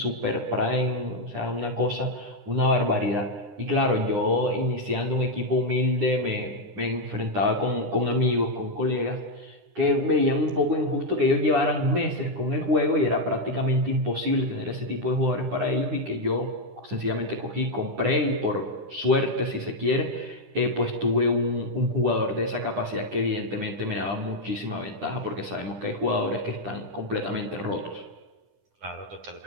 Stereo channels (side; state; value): left; late; 9.9 ms